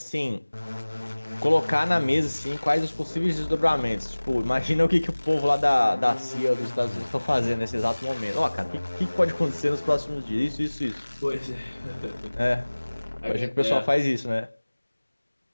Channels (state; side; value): inverted; both; correlation -1.00